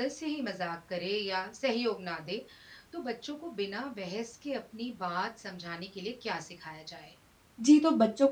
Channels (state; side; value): identical; both; correlation 1.00